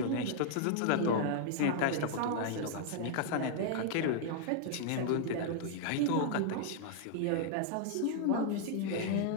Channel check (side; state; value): both; different; correlation 0.00